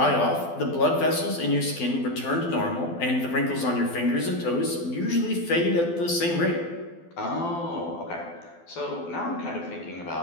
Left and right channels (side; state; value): right; late; 12 ms